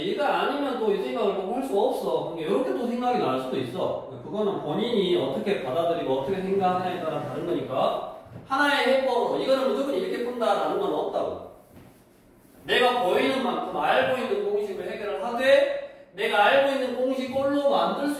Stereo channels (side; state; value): both; identical; correlation 1.00